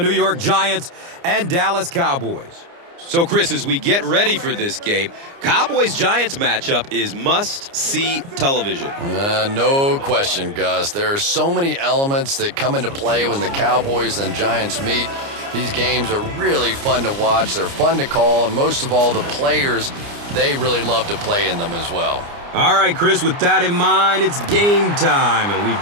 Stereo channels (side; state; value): left; late; 29 ms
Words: York Giants and Dallas Cowboys. So, Chris, as we get ready for this game, Cowboys-Giants matchup is must-see television. No question, Gus. There are so many elements that come into play when the Cowboys and Giants meet. These games are really fun to watch. They're fun to call, and most of all, the players, they really love to play in them as well. All right, Chris, with that in mind, it's game time, and we've